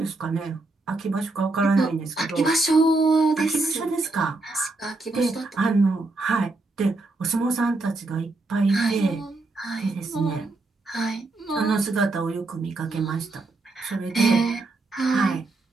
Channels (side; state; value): left; quieter; 3.3 dB